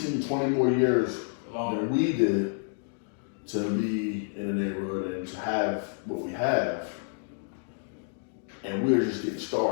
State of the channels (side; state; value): right; silent; 59 dB below the other